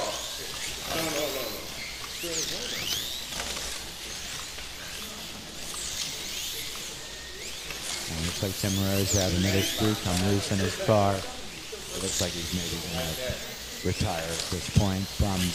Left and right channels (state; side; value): identical; both; correlation 1.00